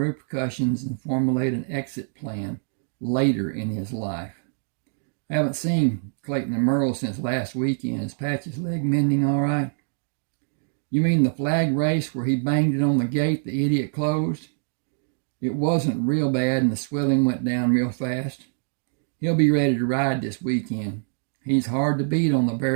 and formulate an exit plan later in his life. I haven't seen Clayton and Merle since last weekend. Is Patch's leg mending all right? You mean the flag race where he banged it on the gate the idiot closed? It wasn't real bad and the swelling went down real fast. He'll be ready to ride this weekend. He's hard to beat on the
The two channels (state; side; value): silent; left; digital silence